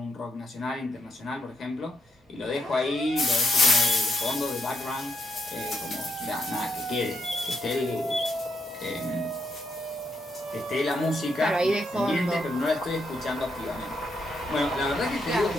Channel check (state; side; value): normal; both; correlation 0.79